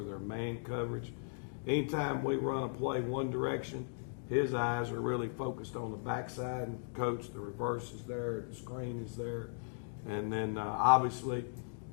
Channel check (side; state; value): right; silent; digital silence